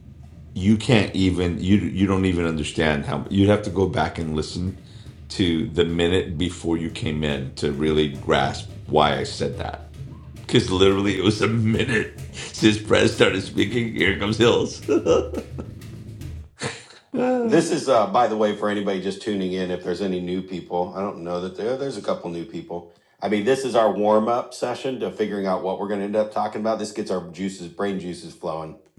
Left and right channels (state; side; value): identical; both; correlation 1.00